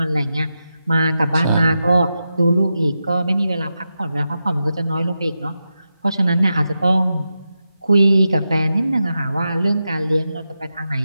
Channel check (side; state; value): both; inverted; correlation -0.89